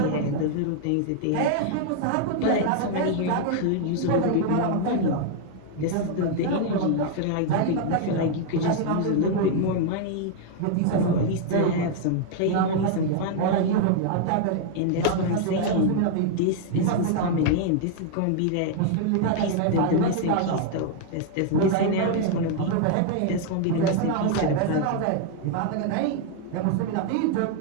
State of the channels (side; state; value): both; different; correlation 0.00